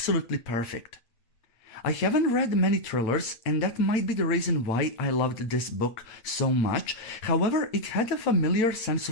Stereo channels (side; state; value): right; late; 8.9 ms